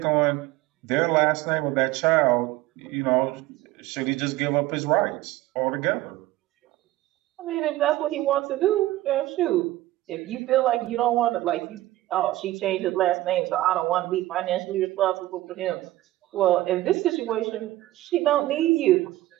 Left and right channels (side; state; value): left; quieter; 16.5 dB